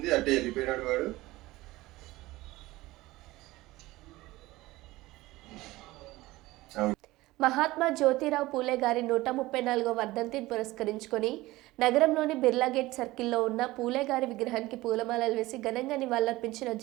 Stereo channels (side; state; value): left; quieter; 18.8 dB